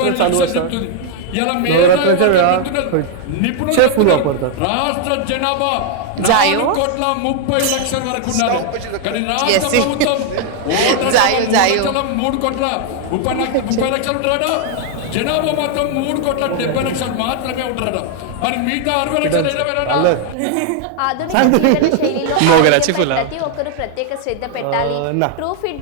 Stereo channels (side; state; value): both; different; correlation 0.00